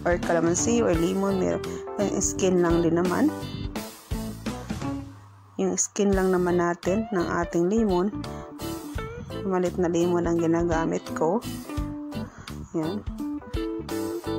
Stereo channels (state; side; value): identical; both; correlation 1.00